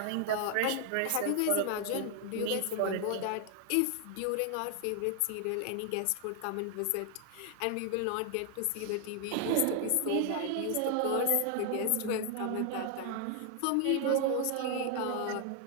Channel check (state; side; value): different; both; correlation 0.00